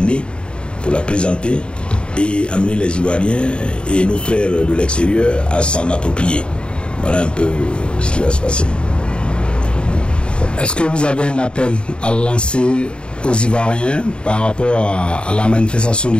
pour la présenter et amener les Ivoiriens et nos frères de l'extérieur à s'en approprier. Voilà un peu ce qui va se passer. Est-ce que vous avez un appel à lancer aux Ivoiriens par rapport à la manifestation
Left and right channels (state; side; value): late; right; 0.053 ms